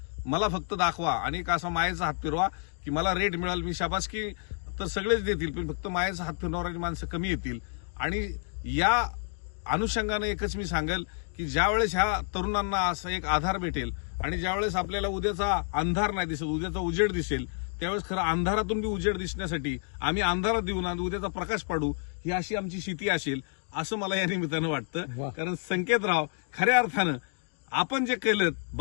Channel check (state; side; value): silent; right; 57 dB below the other